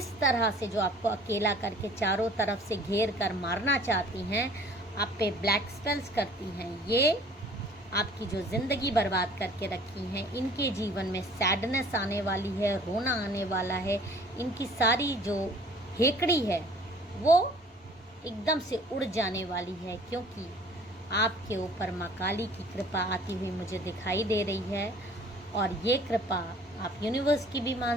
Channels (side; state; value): both; normal; correlation 0.52